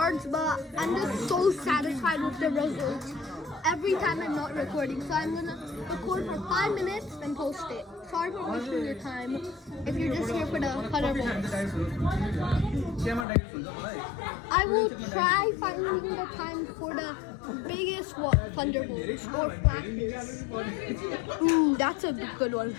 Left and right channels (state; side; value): drops out; right; at 13.2 s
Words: but I'm just so satisfied with the results every time I'm not recording. So I'm gonna record for 5 minutes, then post it. Sorry for wasting your time if you're just here for the thunderbolts. I will try finding the time for the biggest thunderbolts or flashes. Ooh, that's a good one.